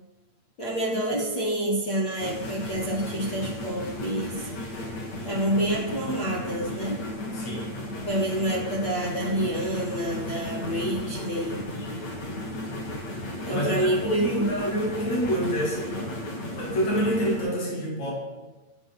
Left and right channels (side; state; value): right; late; 8.7 ms